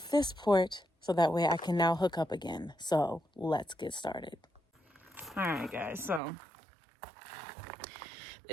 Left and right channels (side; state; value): left; drops out; at 6.2 s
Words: this port so that way I can now hook up again. So let's get started. Alright guys, so